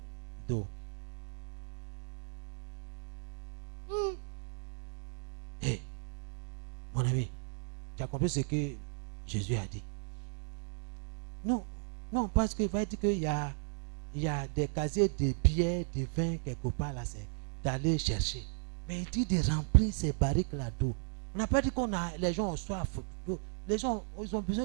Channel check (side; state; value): left; silent; 54 dB below the other